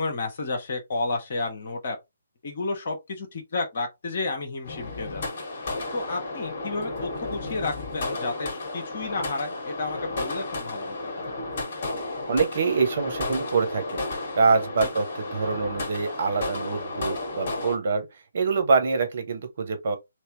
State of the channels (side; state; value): both; inverted; correlation -0.76